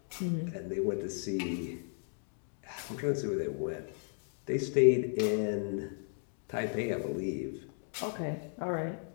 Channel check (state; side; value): silent; right; digital silence